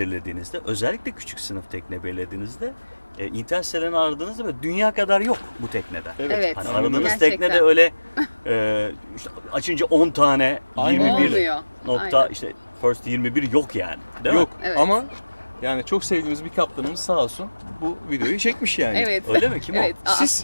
özellikle küçük sınıf tekne belirlediğinizde internet sitelerini aradığınızda böyle dünya kadar yok bu teknede. Evet. Hani aradığınız Gerçekten. teknede öyle işte açınca 10 tane, Aynen. 21 Olmuyor. nokta Aynen. işte first 21 yok yani. Değil Yok mi? Evet. ama yani çok sevdiğimiz bir kaptanımız sağ olsun bu videoyu çekmiş yani. Evet. Öyle mi? Kim Evet. o?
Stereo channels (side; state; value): both; inverted; correlation -1.00